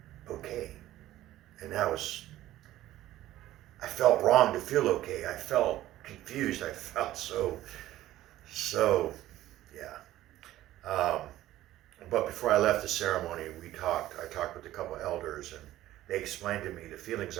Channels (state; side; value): quieter; left; 14.6 dB